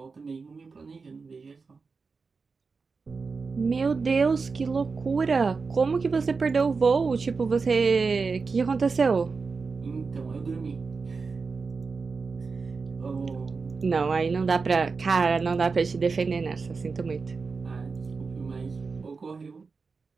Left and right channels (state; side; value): quieter; left; 4.6 dB